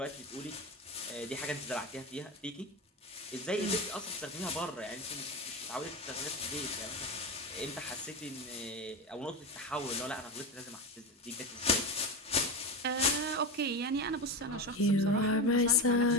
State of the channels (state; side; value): normal; both; correlation 0.20